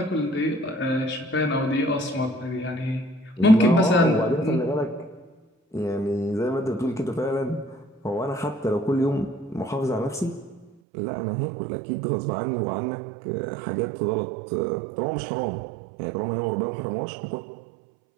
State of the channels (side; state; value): left; drops out; at 10.7 s